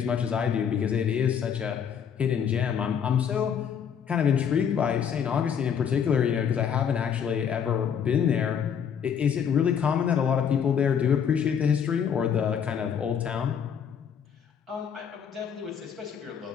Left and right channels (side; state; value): right; quieter; 7.8 dB